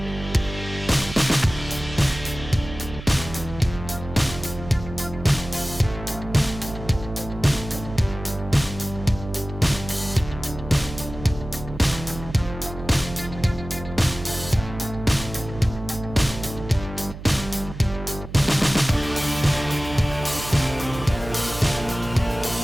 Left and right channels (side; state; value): right; noise; hum, 12 dB below the sound